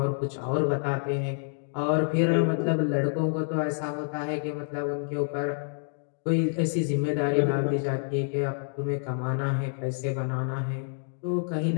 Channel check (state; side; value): silent; right; 59 dB below the other